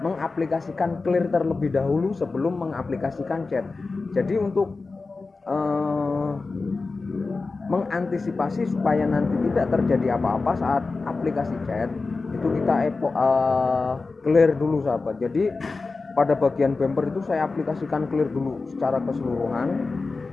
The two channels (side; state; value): right; quieter; 3.9 dB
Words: mengaplikasikan clear terlebih dahulu sebelum mengaplikasikan cat. Jadi untuk mengantisipasi supaya nanti tidak terjadi apa-apa saat aplikasi cat, itu kita clear dulu sahabat. Jadi pada bagian bumper itu saya aplikasikan clear dulu secara keseluruhan.